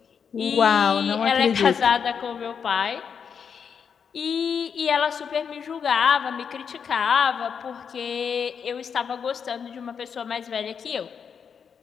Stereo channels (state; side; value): quieter; right; 6.8 dB